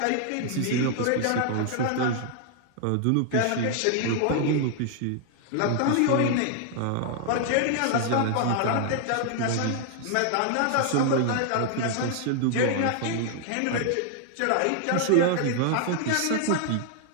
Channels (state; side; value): different; both; correlation 0.00